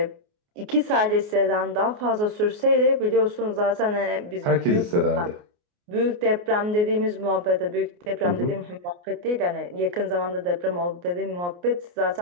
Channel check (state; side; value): late; left; 28 ms